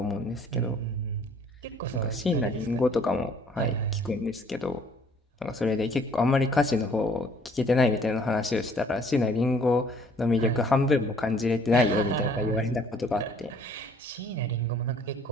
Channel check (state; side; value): normal; both; correlation 0.58